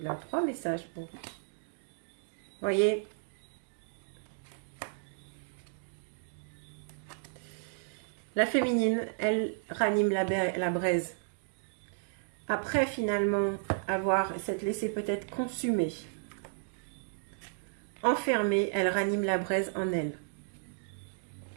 3 messages pour... Voyez, la féminine, elle ranime la braise. Après, finalement, avoir s'être laissé peut-être consumer enfermée, elle ranime la braise en elle.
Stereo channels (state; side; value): silent; left; digital silence